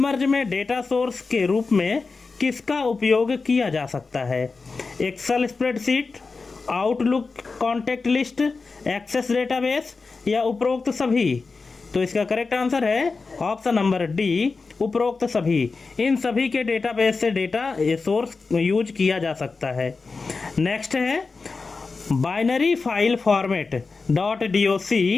में डेटा सोर्स के रूप में किसका उपयोग किया जा सकता है? Excel spreadsheet, Outlook contact list, Access database या उपरोक्त सभी? तो इसका करेक्ट आंसर है ऑप्शन नंबर डी, उपरोक्त सभी। इन सभी के डेटाबेस से डेटा सोर्स यूज किया जा सकता है। नेक्स्ट है, बाइनरी फाइल फॉर्मेट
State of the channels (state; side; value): quieter; right; 4.3 dB